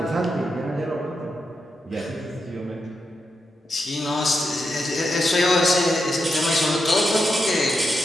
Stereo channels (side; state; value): both; normal; correlation 0.85